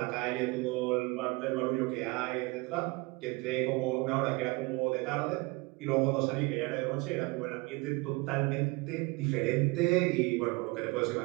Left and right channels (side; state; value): left; quieter; 25.6 dB